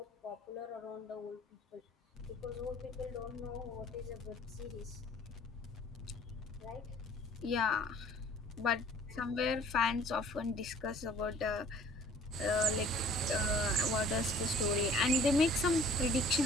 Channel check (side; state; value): both; normal; correlation 0.53